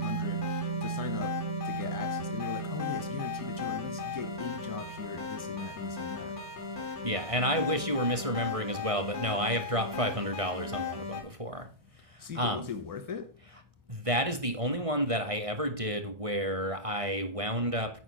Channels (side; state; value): left; late; 1.6 ms